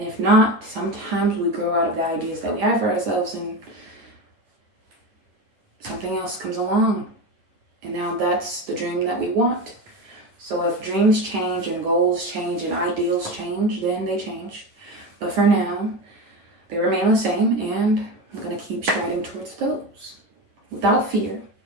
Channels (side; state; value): left; late; 9.6 ms